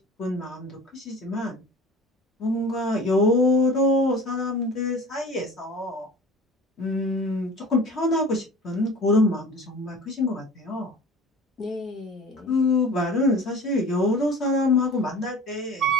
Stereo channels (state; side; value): normal; both; correlation 0.41